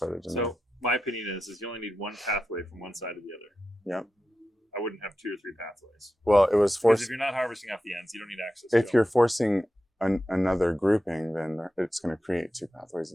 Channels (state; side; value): normal; both; correlation 0.91